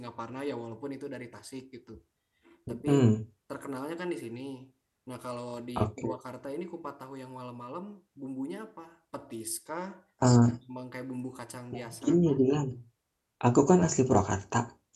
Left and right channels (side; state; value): both; identical; correlation 1.00